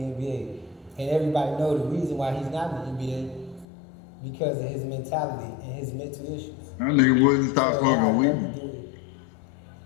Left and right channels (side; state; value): right; drops out; at 3.7 s